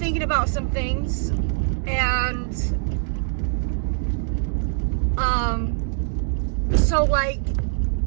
about some things, and so like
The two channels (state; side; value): silent; left; digital silence